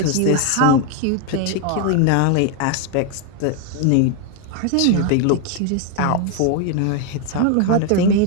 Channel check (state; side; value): different; both; correlation 0.01